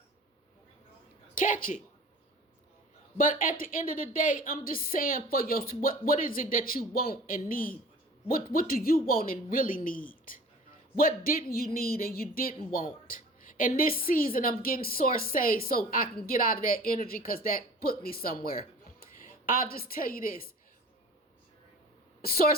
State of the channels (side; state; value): both; normal; correlation 0.43